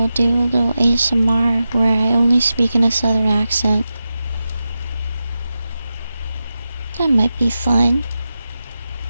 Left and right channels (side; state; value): both; inverted; correlation -0.91